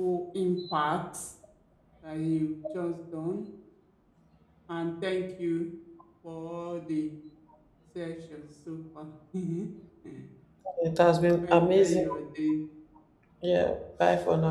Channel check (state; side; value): identical; both; correlation 1.00